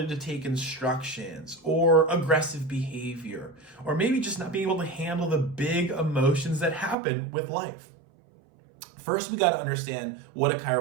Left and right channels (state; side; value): drops out; left; at 7.0 s